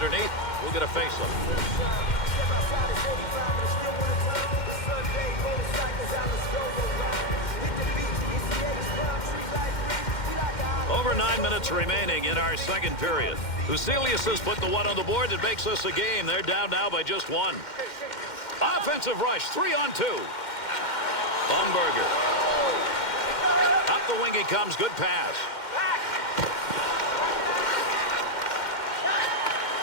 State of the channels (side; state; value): right; late; 2.1 ms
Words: We'll get a face-up. Over 9 minutes remaining in our second period. Huselius has put the one on the board that makes this a game. They're down now by just one. Offensive rush, 3-on-2. Umberger. Up the wing he comes. Good pass.